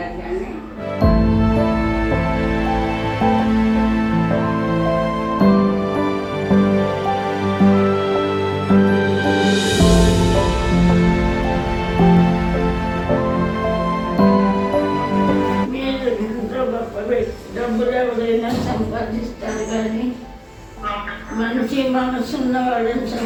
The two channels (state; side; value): identical; both; correlation 1.00